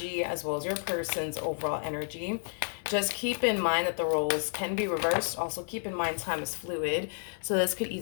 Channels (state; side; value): silent; right; digital silence